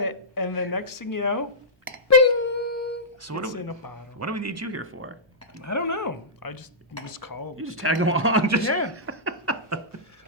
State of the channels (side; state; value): both; normal; correlation -0.15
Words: it, and the next thing you know, bing! So it's in a bottle. What do we need you here for? I don't know. I just was called. You just tag along. Yeah.